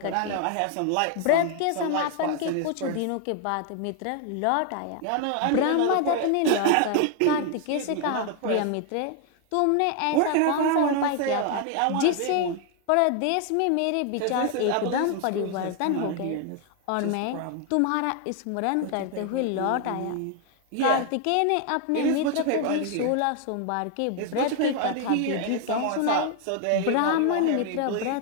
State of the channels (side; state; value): both; different; correlation 0.00